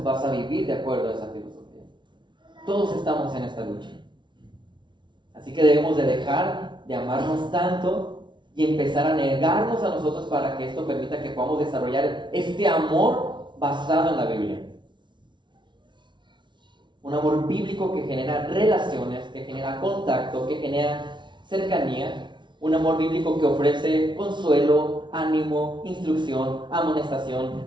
vas a vivir de acuerdo a esa filosofía. Todos estamos en esta lucha. Así que debemos de dejar de amarnos tanto y empezar a negarnos a nosotros para que esto permita que podamos desarrollar este amor basado en la Biblia. Un amor bíblico que genera relaciones, que genera contacto, que genera cercanía. Un amor bíblico que ofrece consuelo, ánimo, instrucción, amonestación,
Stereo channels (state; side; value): late; left; 0.23 ms